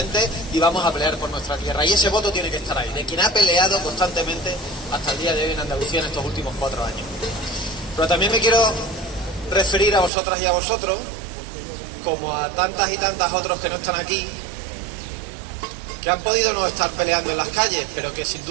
y vamos a pelear por nuestra tierra. Y ese voto tiene que estar ahí, de quien ha peleado constantemente hasta el día de hoy en Andalucía en estos últimos 4 años. Pero también me quiero referir a vosotras y a vosotros, como a tantas y tantas otros que no están aquí, que han podido no estar peleando en las calles, pero que sin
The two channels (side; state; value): left; drops out; at 10.1 s